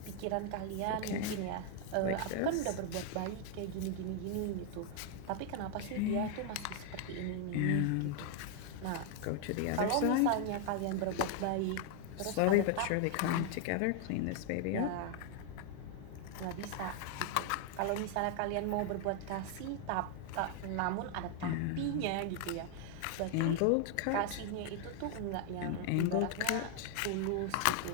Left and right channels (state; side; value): different; both; correlation 0.00